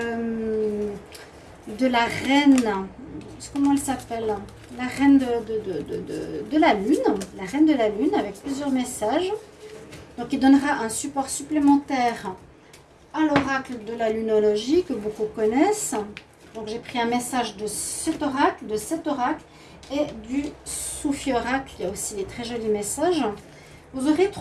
la reine, comment elle s'appelle, la reine de la lune, la reine de la lune avec plusieurs messages. Donc il donnera un support supplémentaire à l'oracle de la lunologie que beaucoup connaissent. Donc j'ai pris un message de cet oracle et du Soufi oracle. Il y a aussi des très jolis messages. Vous aurez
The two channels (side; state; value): both; identical; correlation 1.00